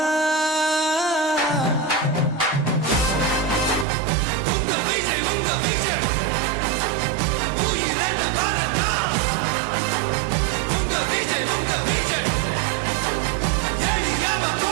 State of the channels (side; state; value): left; drops out; at 3.9 s